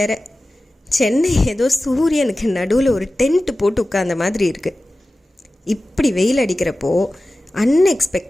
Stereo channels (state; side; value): normal; both; correlation 0.95